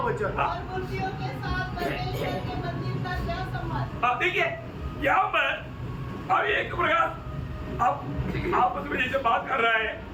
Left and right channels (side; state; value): both; identical; correlation 1.00